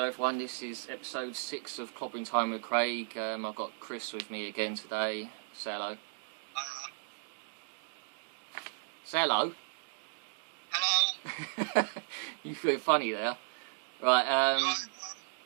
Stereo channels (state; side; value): silent; left; digital silence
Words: everyone, this is episode 6 of Clobbering Time with Craig. I've got Chris with me again today. Say hello. Say hello. Hello. You feel funny there. Right,